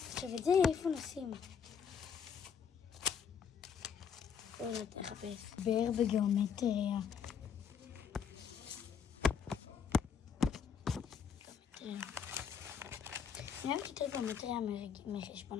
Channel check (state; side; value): quieter; right; 7.1 dB